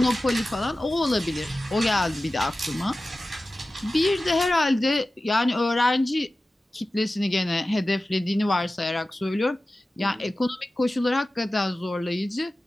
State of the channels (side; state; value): both; normal; correlation 0.95